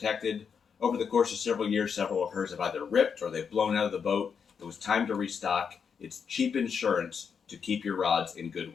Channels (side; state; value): right; quieter; 6.6 dB